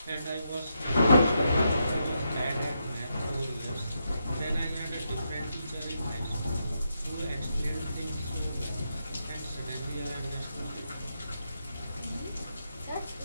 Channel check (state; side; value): inverted; both; correlation -0.83